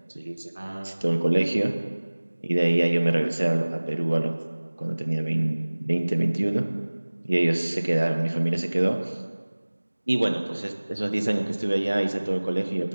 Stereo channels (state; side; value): inverted; both; correlation -1.00